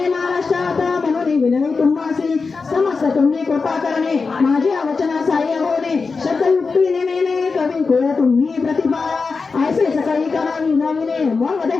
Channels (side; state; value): right; quieter; 4.6 dB